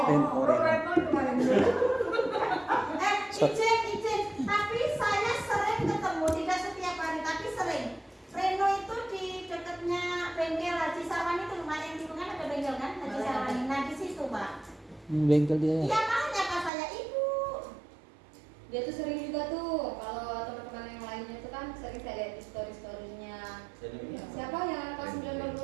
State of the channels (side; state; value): left; drops out; at 16.7 s